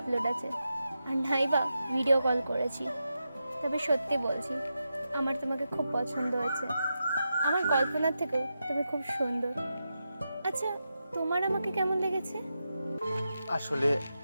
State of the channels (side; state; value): both; inverted; correlation -0.88